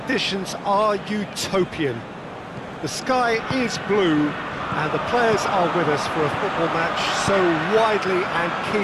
are utopian. The sky is blue, and the players are with us for a football match so widely and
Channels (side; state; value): both; identical; correlation 1.00